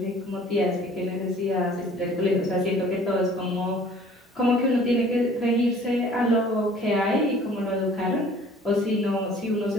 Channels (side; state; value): both; normal; correlation 0.52